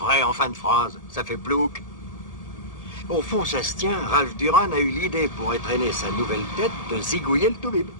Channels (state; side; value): late; right; 1.8 ms